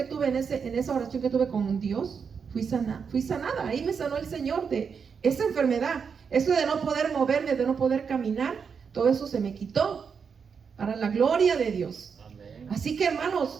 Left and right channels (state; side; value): quieter; left; 6.2 dB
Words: tuve con Dios, fui sanada, ahí me sanó el Señor de esa enfermedad, eso de no poder moverme, de no poder caminar, todo eso se me quitó, para la gloria de Dios. Amén. Así que